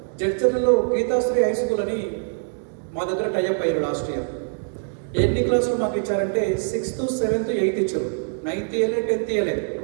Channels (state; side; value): silent; left; digital silence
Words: జడ్చర్లలో గీతాశ్రీ హై స్కూల్ అని మా దగ్గర టైఅప్ అయ్యారు లాస్ట్ ఇయర్. ఎన్ని క్లాసులు మాకు ఇచ్చారంటే 6th, 7th, 8th ఇచ్చారు, 9th ఇయర్లే, 10th ఇయర్లే.